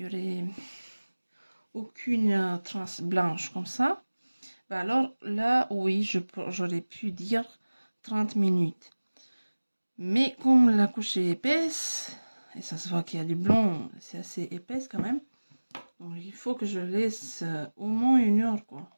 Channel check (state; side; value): inverted; both; correlation -1.00